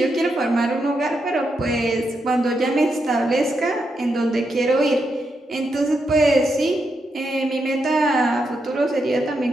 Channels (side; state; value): both; normal; correlation 0.83